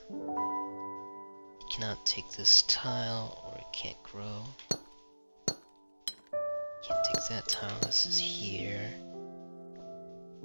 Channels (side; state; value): both; inverted; correlation -1.00